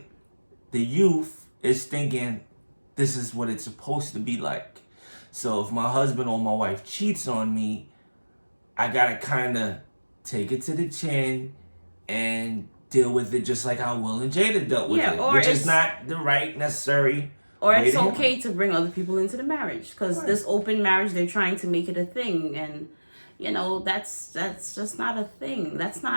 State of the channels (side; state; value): both; inverted; correlation -1.00